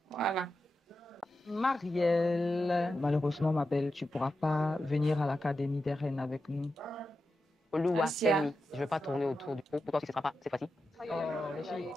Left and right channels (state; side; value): normal; both; correlation 0.90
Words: Voilà. Marielle, malheureusement, ma belle, tu ne pourras pas venir à l'Académie des Reines avec nous. Oluwa, Asia. tell me, je ne vais pas tourner autour du pot. Pourquoi ce ne sera pas cette fois-ci?